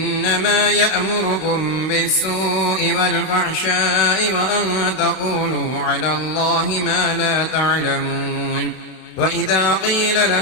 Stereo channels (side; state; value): right; late; 32 ms